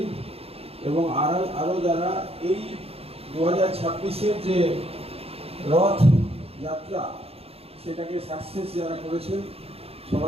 এবং আরও যারা এই 2026-এর যে রথ যাত্রা সেটাকে সাকসেস যারা করেছেন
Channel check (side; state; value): left; late; 0.29 ms